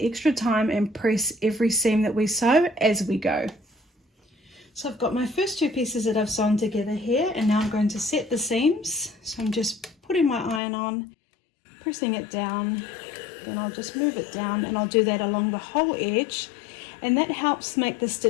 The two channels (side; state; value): right; drops out; at 10.6 s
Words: time and press every seam that we sew as we go. So I've got my first 2 pieces that I've sewn together here, and now I'm going to set the seams. So I'm just putting my iron on, pressing it down, and I'll just move it down, and I'll do that along the whole edge, and that helps make the